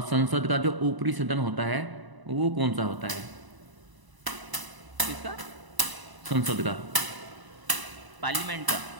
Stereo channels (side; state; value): left; late; 1.0 ms